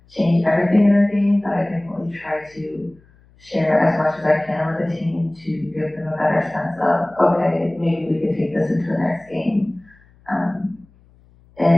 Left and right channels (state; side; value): noise; left; hum, 30 dB below the sound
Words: change everything in our game, but I definitely try to share as much as I can with the team to give them a better sense of, okay, maybe we could take this into the next game.